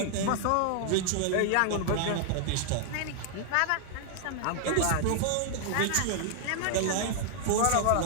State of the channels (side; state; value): both; different; correlation -0.01